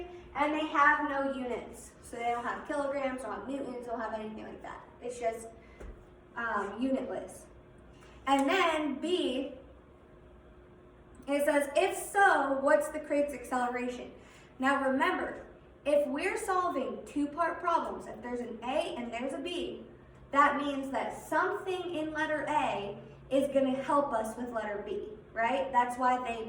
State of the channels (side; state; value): both; identical; correlation 1.00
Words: and they have no units. So they don't have kilograms, don't have newtons, don't have anything like that. It's just unitless. And then B, it says, if so, what's the crate's acceleration? Now remember, if we're solving 2-part problems, if there's an A and there's a B, that means that something in letter A is going to help us with letter B, right? That's why